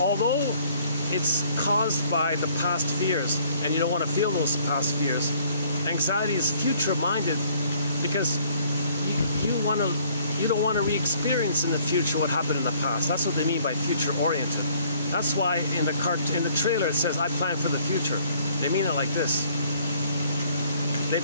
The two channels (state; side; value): inverted; both; correlation -0.61